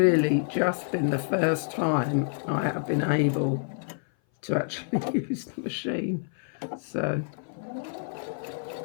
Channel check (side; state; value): right; silent; 57 dB below the other